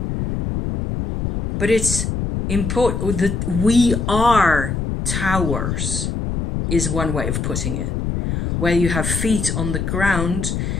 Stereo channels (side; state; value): left; noise; rumble, 2 dB below the sound